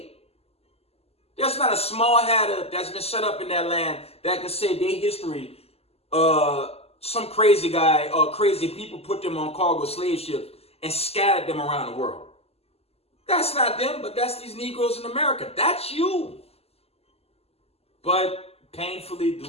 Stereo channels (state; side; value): late; right; 0.29 ms